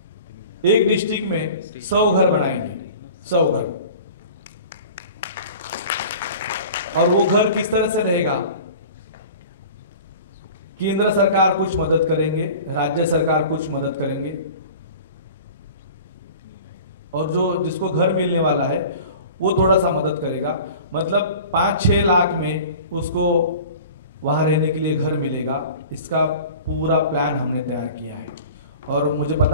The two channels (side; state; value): both; inverted; correlation -0.41